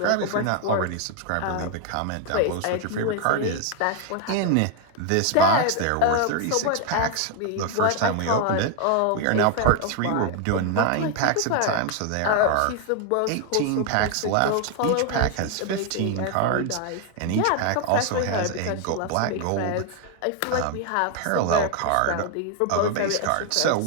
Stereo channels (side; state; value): both; different; correlation 0.01